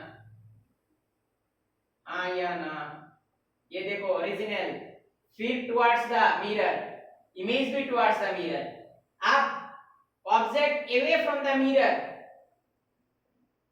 हाँ या ना। ये देखो ओरिजिनल, फिर टुवर्ड्स द मिरर, इमेज भी टुवर्ड्स द मिरर। अब object away from the mirror,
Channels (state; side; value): identical; both; correlation 1.00